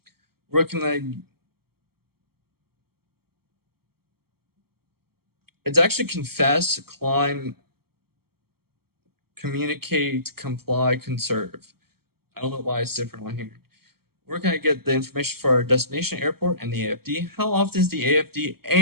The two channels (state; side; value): late; left; 0.95 ms